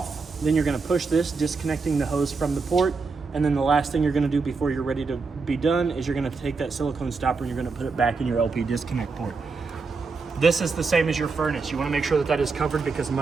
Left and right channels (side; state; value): left; quieter; 4.4 dB